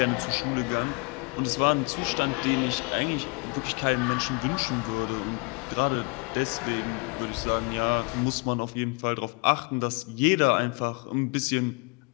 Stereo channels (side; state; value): right; quieter; 31.0 dB